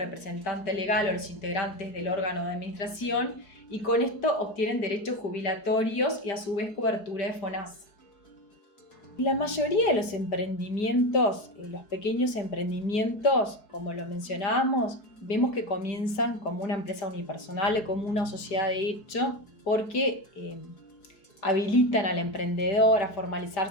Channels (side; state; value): right; late; 4.7 ms